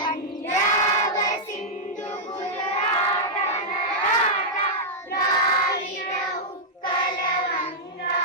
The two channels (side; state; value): both; normal; correlation -0.08